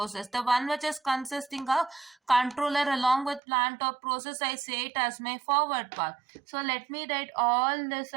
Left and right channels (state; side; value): drops out; left; at 3.4 s